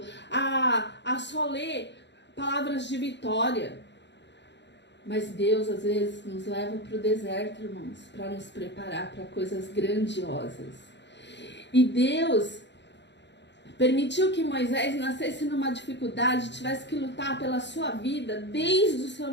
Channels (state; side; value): late; right; 0.51 ms